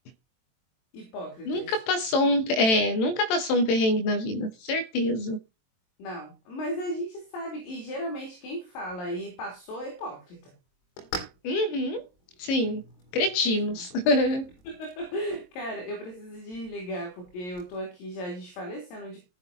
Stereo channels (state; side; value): late; right; 22 ms